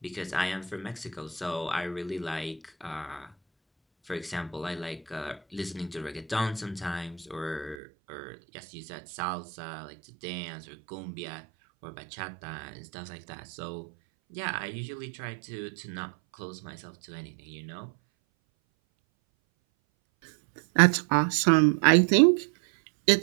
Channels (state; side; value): drops out; left; at 7.8 s